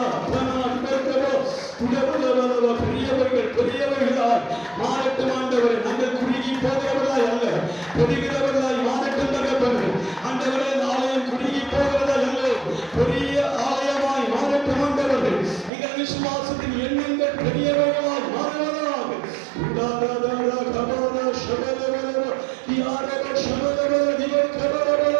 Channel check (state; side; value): drops out; left; at 15.7 s